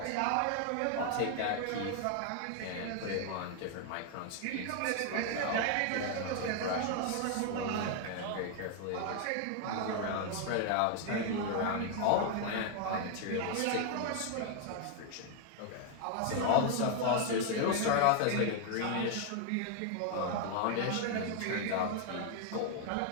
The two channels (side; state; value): both; different; correlation 0.00